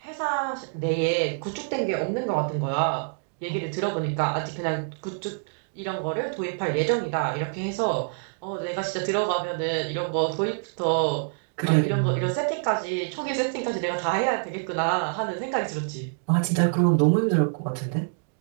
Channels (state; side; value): silent; left; digital silence